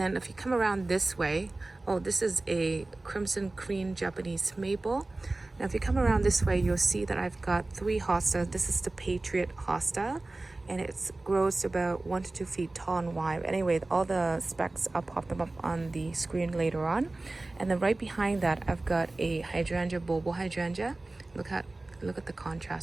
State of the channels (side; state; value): left; quieter; 3.0 dB